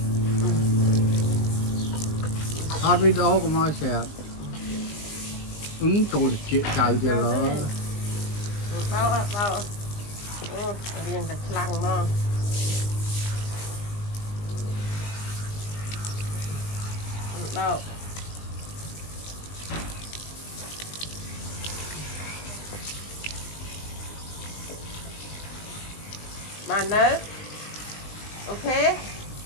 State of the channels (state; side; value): late; right; 20 ms